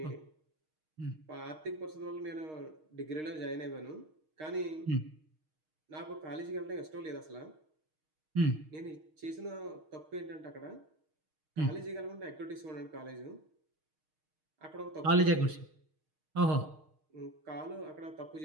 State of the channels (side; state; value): left; late; 6.5 ms